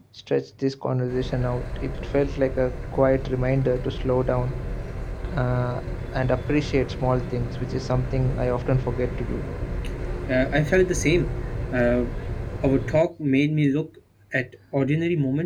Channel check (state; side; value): identical; both; correlation 1.00